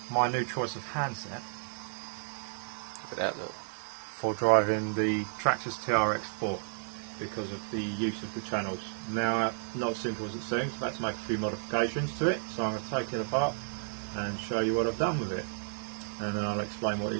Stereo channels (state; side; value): silent; left; digital silence